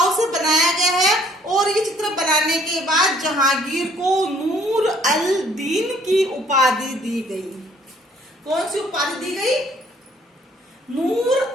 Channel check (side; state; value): both; normal; correlation 0.60